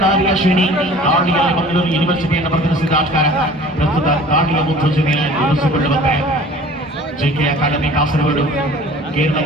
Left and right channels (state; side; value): normal; both; correlation 0.46